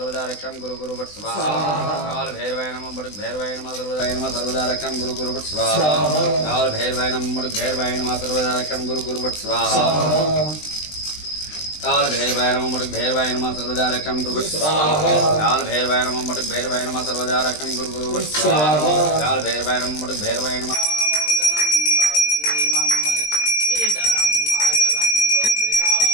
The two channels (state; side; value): late; right; 20 ms